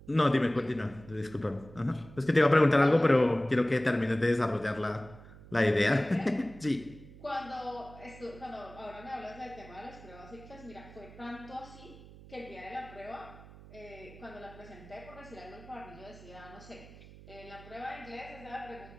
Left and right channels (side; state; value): right; noise; hum, 19 dB below the sound